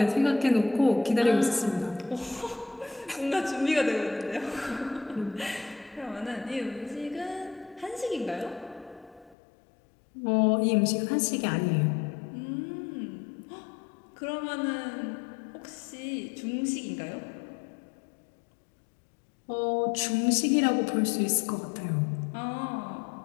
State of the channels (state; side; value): drops out; right; at 9.3 s